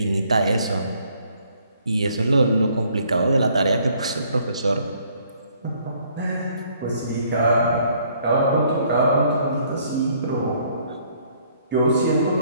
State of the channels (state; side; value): inverted; both; correlation -0.64